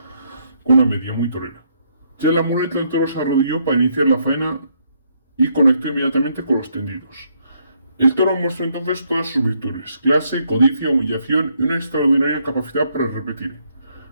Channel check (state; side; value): inverted; both; correlation -0.73